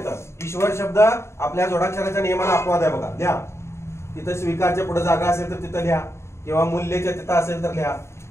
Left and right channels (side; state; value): right; late; 0.13 ms